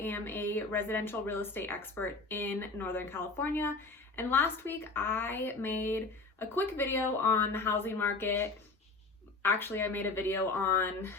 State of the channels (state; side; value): quieter; right; 3.7 dB